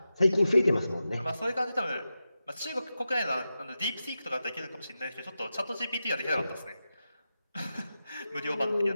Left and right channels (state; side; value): inverted; both; correlation -0.91